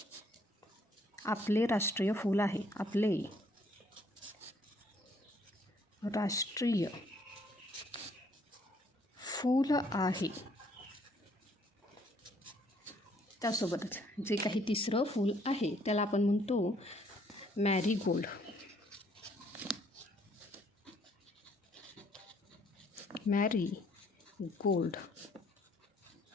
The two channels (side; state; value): both; normal; correlation 0.65